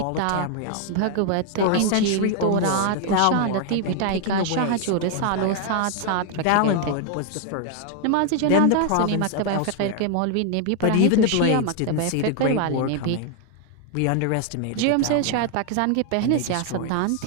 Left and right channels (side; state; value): both; different; correlation 0.00